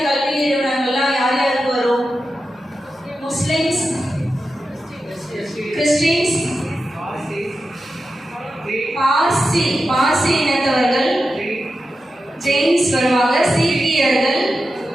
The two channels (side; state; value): both; normal; correlation 0.91